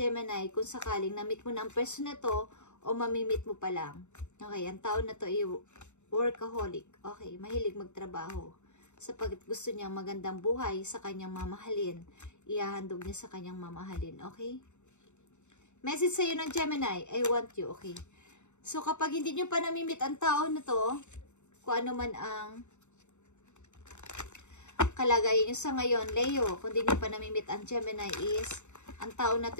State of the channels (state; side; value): late; right; 0.83 ms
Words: kung sakaling na-meet mo na ang person na to o mamimit mo pa lang. Okay, ang tao na to ay workaholic. Okay, mahilig magtrabaho. Sapagkat gusto niya magandang buhay sa kanyang mamahalin. Ihahandog niya sa kanyang mamahalin. Okay? Message sa'yo ng Gemini, I want you. Okay. So, kapag hindi nyo pa namimit ang tao na to, kung ano man ang kalagayan nyo sa ngayon, Leo, kung hindi nyo pa namimit ang Gemini is, ang tao na